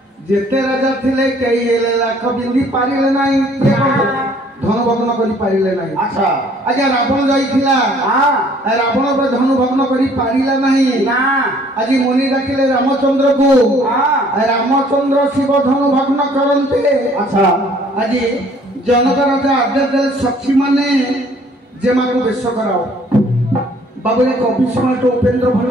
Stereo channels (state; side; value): normal; both; correlation 0.58